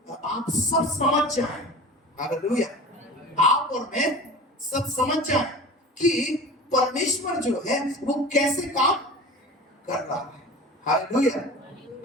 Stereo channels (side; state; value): both; normal; correlation 0.36